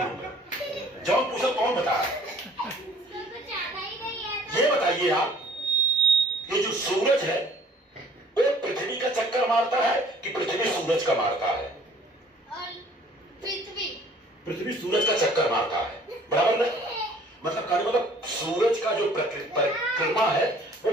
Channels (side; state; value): both; normal; correlation 0.55